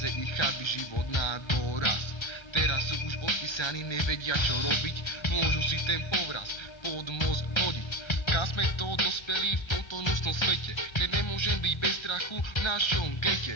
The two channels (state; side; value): late; right; 1.3 ms